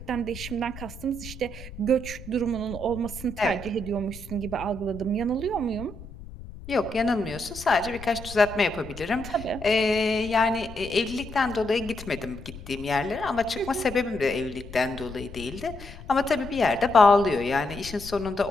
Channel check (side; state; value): left; noise; rumble, 14 dB below the sound